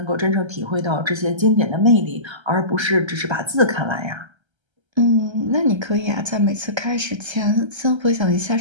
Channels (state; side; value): late; left; 1.3 ms